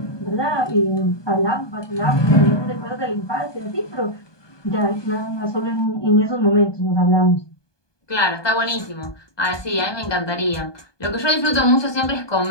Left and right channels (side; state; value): right; late; 1.2 ms